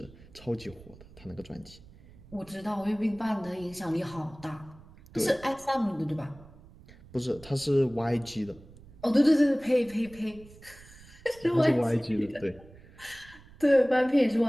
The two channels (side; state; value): right; noise; rumble, 22 dB below the sound